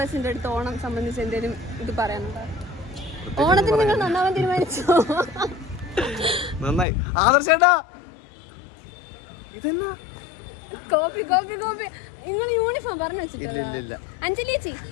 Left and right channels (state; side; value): drops out; right; at 6.9 s